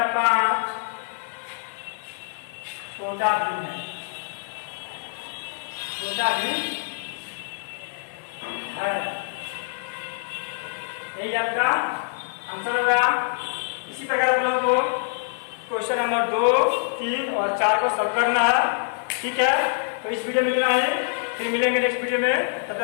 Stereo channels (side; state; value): right; silent; digital silence